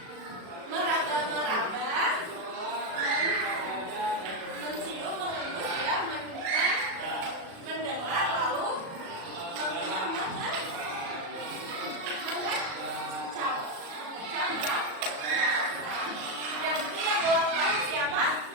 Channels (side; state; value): left; late; 37 ms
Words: meraba-meraba, mencium, mengendus ya, mendengar, lalu mengecap. Yang ketiga ulang tahun siapa?